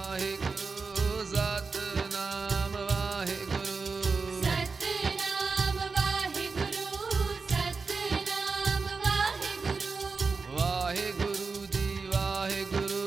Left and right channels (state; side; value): quieter; left; 4.5 dB